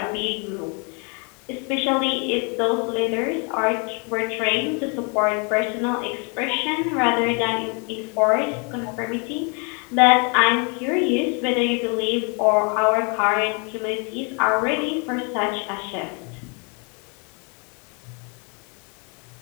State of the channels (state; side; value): quieter; right; 35.3 dB